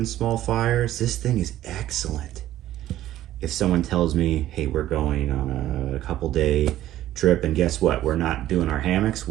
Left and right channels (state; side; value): quieter; left; 13.5 dB